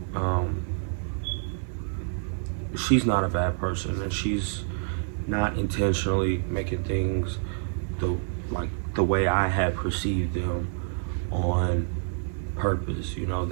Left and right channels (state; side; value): silent; left; 60 dB below the other